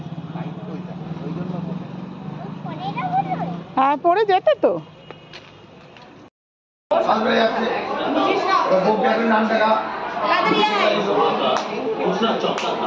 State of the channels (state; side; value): identical; both; correlation 1.00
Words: হ্যাঁ, পড়ে যেতে তো।